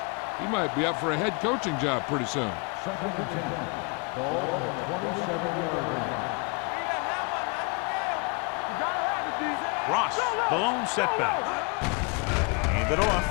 he might be up for a head coaching job pretty soon. 2nd and 10. Ball on the 27-yard line. Ross, the lone setback. Hand it off.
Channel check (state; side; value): quieter; right; 32.4 dB